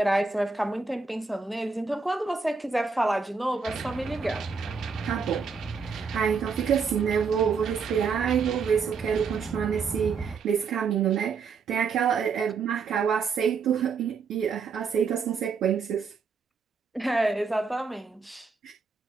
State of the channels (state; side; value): quieter; left; 5.3 dB